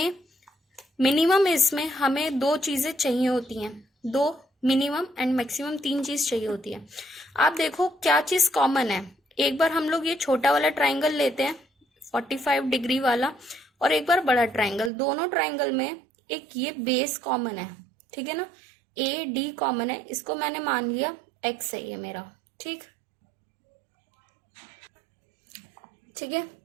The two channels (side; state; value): left; drops out; at 14.9 s